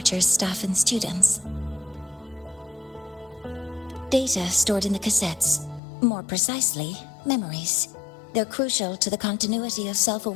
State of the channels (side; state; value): right; drops out; at 5.8 s